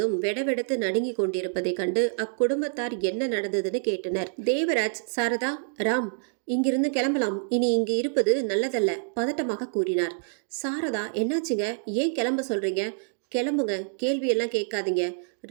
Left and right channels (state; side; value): silent; left; digital silence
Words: வெடவெடத்து நடுங்கி கொண்டிருப்பதை கண்டு அக்குடும்பத்தார் என்ன நடந்ததுன்னு கேட்டனர். தேவராஜ், சாரதா, ராம், இங்கிருந்து கிளம்பலாம். இனி இங்கு இருப்பது நல்லதல்ல, பதட்டமாக கூறினார். சாரதா, என்னாச்சுங்க? ஏன் கிளம்ப சொல்றீங்க? கிளம்புங்க, கேள்வியெல்லாம் கேட்காதீங்க.